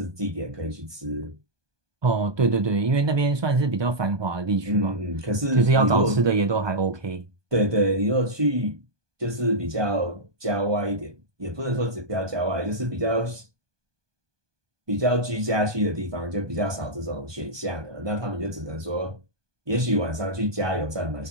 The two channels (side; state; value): left; late; 1.2 ms